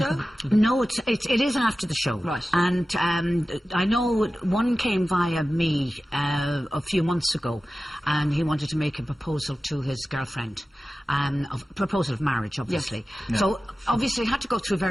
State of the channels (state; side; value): normal; both; correlation 0.95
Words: No, it is after the show. Right. And I know one came via me a few months ago, and he wanted to make a proposal to his girlfriend. A proposal of marriage, obviously. Yes. Yeah. So, obviously, I had to go through